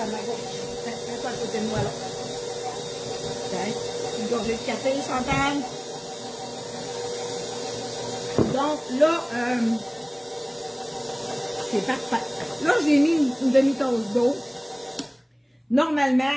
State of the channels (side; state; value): both; identical; correlation 1.00